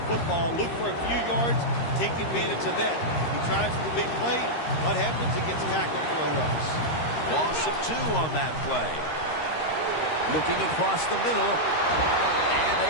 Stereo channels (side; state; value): right; late; 13 ms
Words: football. Look for a few yards, take advantage of that. He tries for the big play. What happens? He gets tackled for a loss. Loss of 2 on that play. Looking across the middle, and